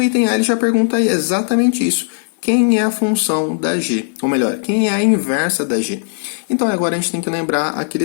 item A ele já pergunta aí exatamente isso. Quem é a função da g? Ou melhor, quem é a inversa da g? Então agora a gente tem que lembrar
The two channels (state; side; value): silent; right; 57 dB below the other